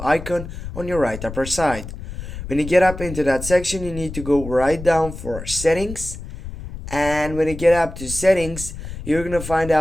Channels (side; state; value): left; noise; rumble, 10 dB below the sound